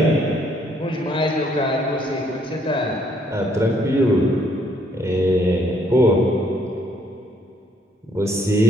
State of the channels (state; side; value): normal; both; correlation 0.67